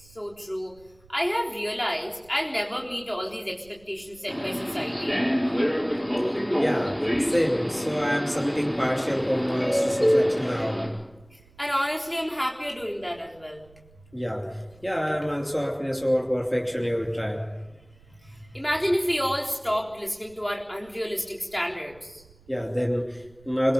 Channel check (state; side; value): noise; right; rumble, 27 dB below the sound